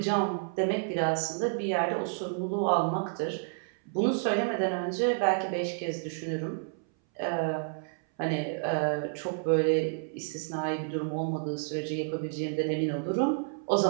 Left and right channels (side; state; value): left; silent; 58 dB below the other